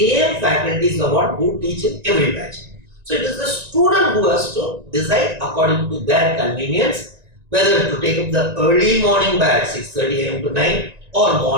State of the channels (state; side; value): late; left; 1.9 ms